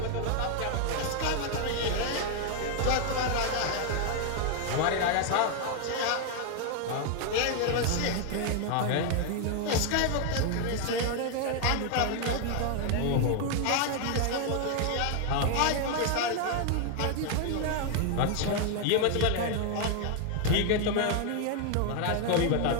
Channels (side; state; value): both; different; correlation 0.00